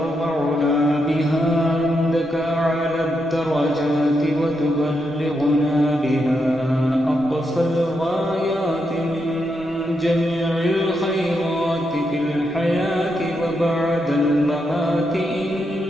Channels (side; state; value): both; normal; correlation 0.82